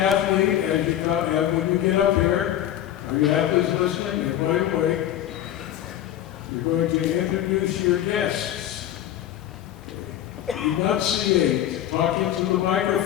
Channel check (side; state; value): right; quieter; 11.9 dB